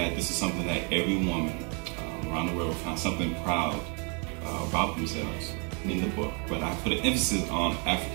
this is something that every woman around the world will find something proud about themselves in the book. But I put an emphasis on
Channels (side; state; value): left; quieter; 35.8 dB